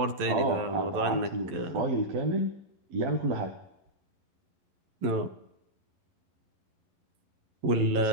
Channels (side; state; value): left; late; 11 ms